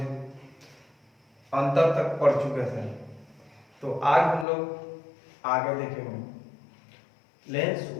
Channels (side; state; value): right; drops out; at 4.5 s